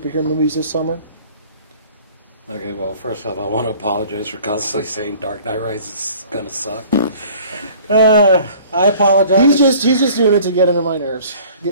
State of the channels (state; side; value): inverted; both; correlation -0.50